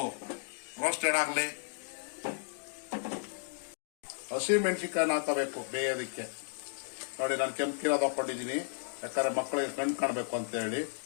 ರೋಸ್ಟೆಡ್ ಆಗಲಿ. ಹಸಿ ಮೆಣಸಿನ್ಕಾಯಿ ಹಾಕಬೇಕು ಬೇಯೋದಕ್ಕೆ. ನೋಡಿ ನಾನು ಕೆಂಪು ಕಿರೋದು ಹಾಕೊಂಡಿದ್ದೀನಿ, ಯಾಕಂದ್ರೆ ಮಕ್ಕಳಿಗೆ ಕಣ್ಣು ಕಾಣಬೇಕು ಅಂತ ಹೇಳಿ.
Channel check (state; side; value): silent; right; digital silence